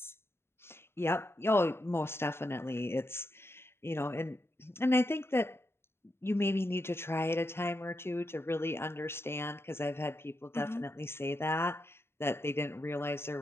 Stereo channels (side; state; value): right; late; 0.12 ms